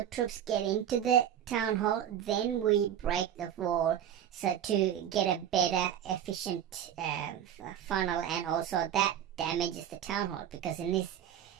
troops get into the town hall, then we break the wall, so to get a better, efficient funnel, and also that damages the town hall, because in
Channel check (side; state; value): left; quieter; 10.0 dB